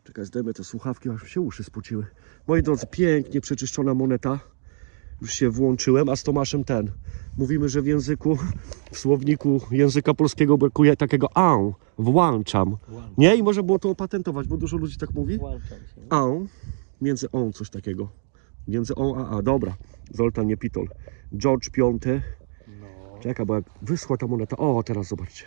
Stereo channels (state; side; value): silent; left; digital silence